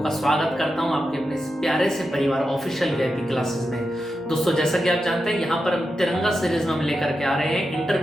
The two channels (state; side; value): normal; both; correlation 0.89